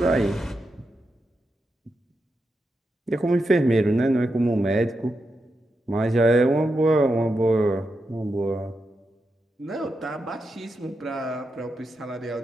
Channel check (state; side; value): normal; both; correlation 0.87